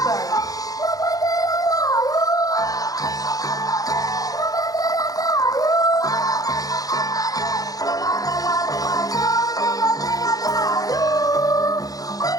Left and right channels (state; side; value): late; right; 0.18 ms